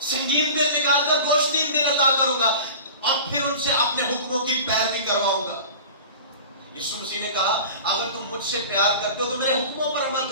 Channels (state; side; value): inverted; both; correlation -0.37